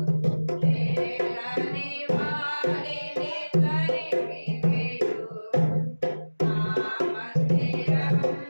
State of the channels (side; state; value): both; inverted; correlation -1.00